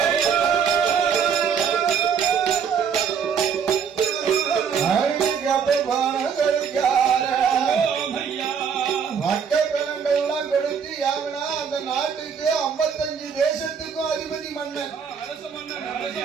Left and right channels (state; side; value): quieter; left; 6.9 dB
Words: மக்கள்லாம் கொடுத்து யாவனா அந்த நாட்டுக்கு 55 தேசத்துக்கும் அதிபதி மன்னன்